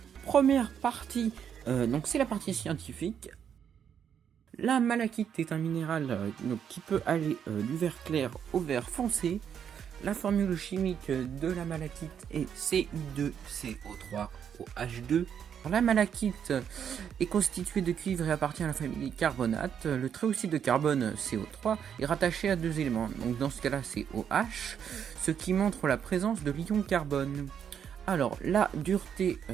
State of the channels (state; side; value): quieter; left; 8.2 dB